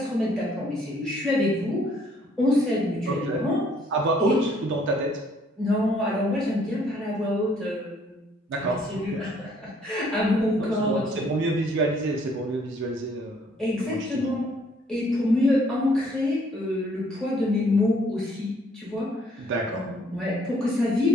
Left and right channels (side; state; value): both; normal; correlation 0.63